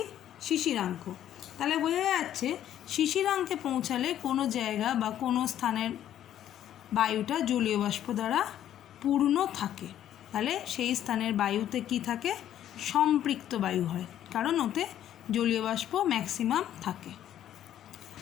শিশিরাঙ্ক। তাহলে বোঝা যাচ্ছে শিশিরাঙ্কে পৌঁছালে কোনো জায়গা বা কোনো স্থানের বায়ুটা জলীয় বাষ্প দ্বারা পূর্ণ থাকে, তাহলে সেই স্থানের বায়ুতে কি থাকে? সম্পৃক্ত বায়ু হয়, কারণ ওতে জলীয় বাষ্প ম্যাক্সিমাম থাকে।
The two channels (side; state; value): right; quieter; 11.2 dB